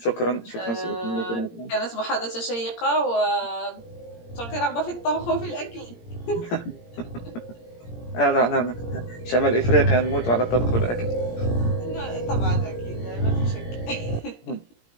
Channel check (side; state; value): right; late; 17 ms